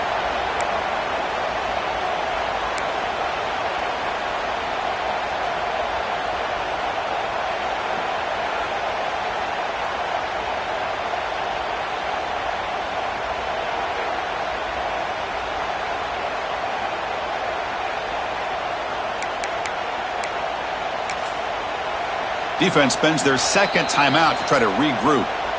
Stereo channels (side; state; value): both; identical; correlation 1.00